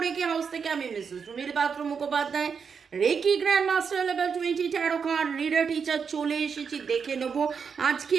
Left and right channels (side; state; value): left; quieter; 6.2 dB